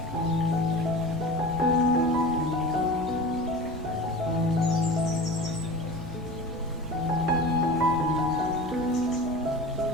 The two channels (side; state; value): both; normal; correlation 0.34